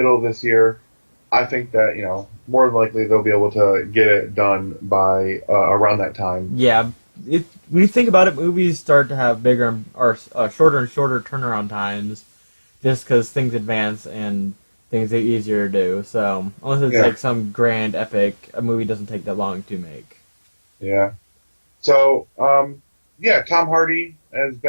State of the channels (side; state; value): both; inverted; correlation -1.00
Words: of this year, I think that, more than likely they'll be able to get it done by around that time. Yeah, when you think about it, movies start to have bigger or shorter and shorter turnaround times, just because things advance and things get easier to do. So unless it's Yeah, like some grand epic, a movie doesn't take that long to make. yeah. So, yeah, Tom Hardy as